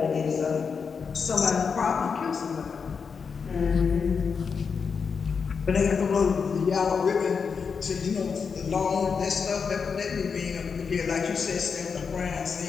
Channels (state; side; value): quieter; right; 5.8 dB